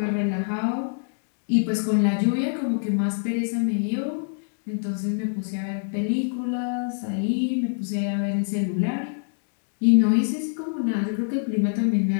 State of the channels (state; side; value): silent; right; digital silence